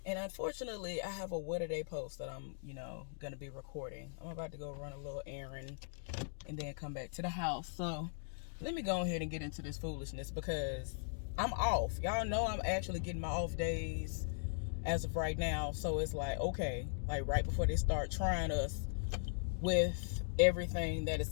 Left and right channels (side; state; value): right; silent; digital silence